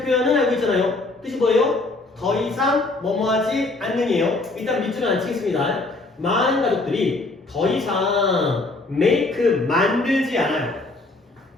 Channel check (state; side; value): quieter; right; 3.1 dB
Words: 표현은 알고 있잖아요. 뜻이 뭐예요? 더 이상 뭐뭐하지 않는이에요. 일단 밑줄은 안 치겠습니다. 많은 가족들이 더 이상 make 만들지 않아요.